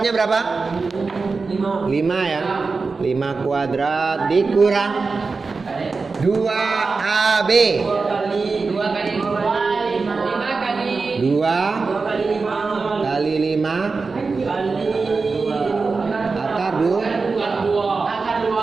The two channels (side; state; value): left; quieter; 4.3 dB